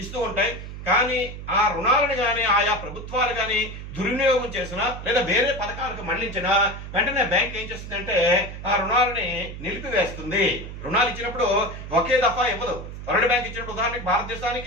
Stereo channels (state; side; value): noise; right; hum, 10 dB below the sound